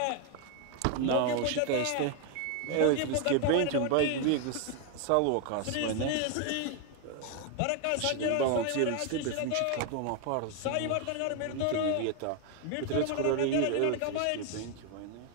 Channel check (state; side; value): different; both; correlation 0.01